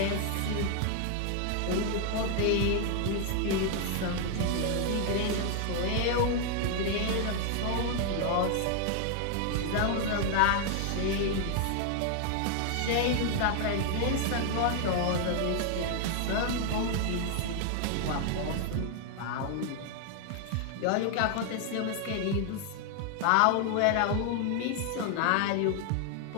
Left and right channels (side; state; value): both; different; correlation 0.00